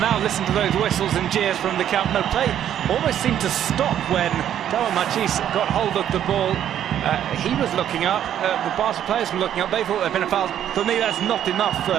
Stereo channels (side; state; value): left; quieter; 10.4 dB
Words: listen to those whistles and jeers from the Camp Nou. Play almost seemed to stop when Darwin Machis got hold of the ball. He was looking up, the Barca players were looking up. They thought there'd been a foul. For me, that's not enough